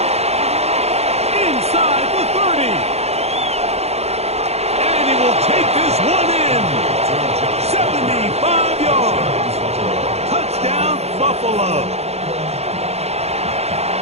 Inside the 30. And he will take this one in. 75 yards. Touchdown, Buffalo.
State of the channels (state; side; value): late; left; 0.31 ms